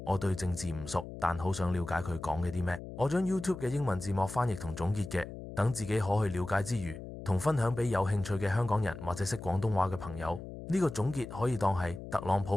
我對政治唔熟，但好想了解佢講嘅啲咩。我將 YouTube 嘅英文字幕翻譯同總結嘅，等自己可去了解之餘，同分享俾有興趣嘅香港人或者識廣東話嘅朋友。呢個總結可以當係特朗普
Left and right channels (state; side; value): noise; left; hum, 11 dB below the sound